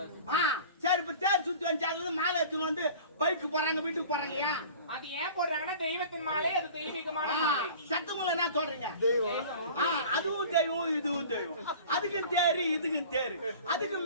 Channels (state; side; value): inverted; both; correlation -0.42